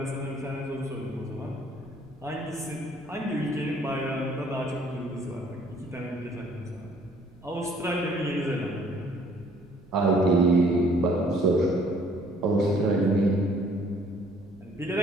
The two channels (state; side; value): noise; right; rumble, 25 dB below the sound